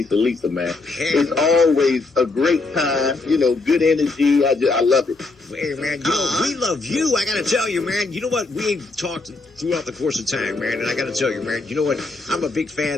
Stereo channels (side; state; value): right; quieter; 3.5 dB